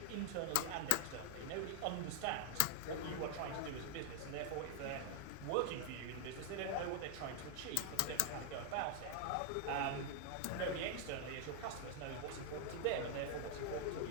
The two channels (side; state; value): both; different; correlation 0.00